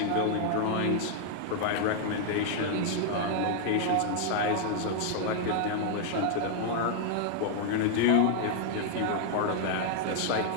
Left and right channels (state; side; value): different; both; correlation -0.01